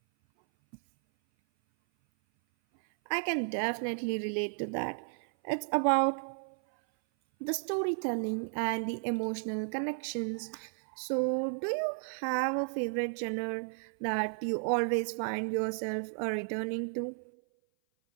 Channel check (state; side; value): silent; left; 56 dB below the other